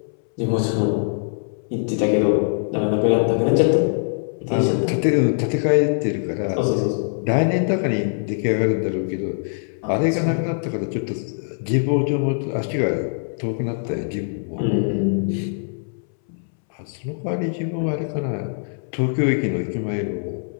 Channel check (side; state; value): right; silent; 64 dB below the other